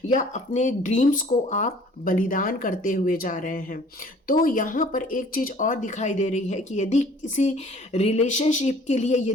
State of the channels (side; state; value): both; normal; correlation 0.53